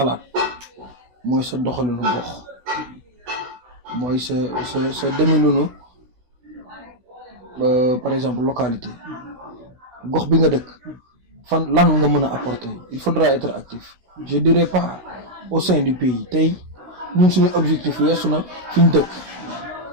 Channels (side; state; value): left; late; 16 ms